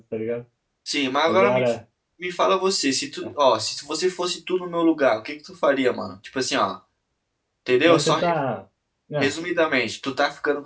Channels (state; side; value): identical; both; correlation 1.00